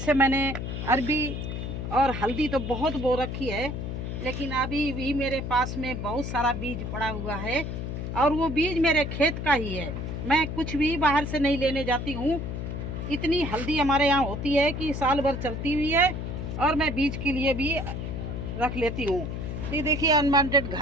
मैंने अरबी और हल्दी तो बहुत बो रखी है, लेकिन अभी भी मेरे पास में बहुत सारा बीज पड़ा हुआ है और वो बीज मेरे खेत का ही है। मैं कुछ भी बाहर से नहीं लेने जाती हूँ। इतनी हल्दी हमारे यहाँ होती है कि साल भर चलती हुई है, और मैं बीज के लिए भी रख लेती हूँ। ये देखिए अनवांटेड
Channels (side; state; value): left; noise; hum, 5 dB below the sound